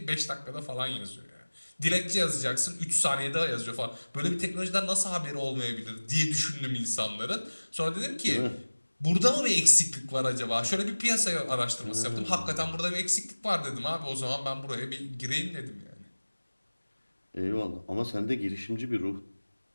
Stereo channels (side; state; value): both; inverted; correlation -1.00